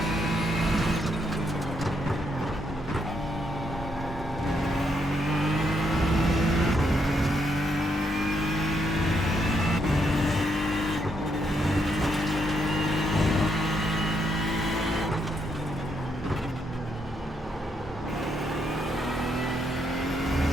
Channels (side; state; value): both; normal; correlation 0.77